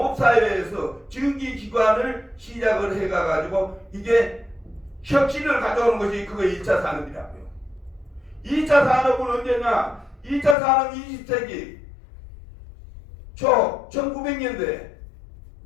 전기기관을 시작을 해가지고 이게 혁신을 가져오는 것이 그거 1차 산업이라고요. 2차 산업은 언제냐? 2차 산업 20세기 초 1900년대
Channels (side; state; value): right; drops out; at 10.6 s